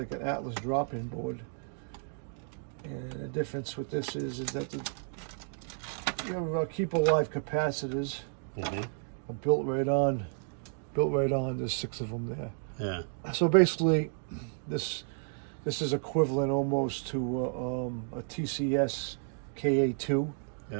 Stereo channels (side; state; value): left; silent; 56 dB below the other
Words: an Atlas drop-in board, and the difference with this is that your keep alive capacitors are built right on. There's 6 of them there. Yeah. So basically, this is equivalent almost to a TCS KA2,